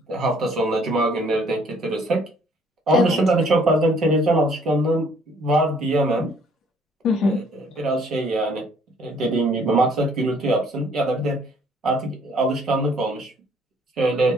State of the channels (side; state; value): both; normal; correlation 0.61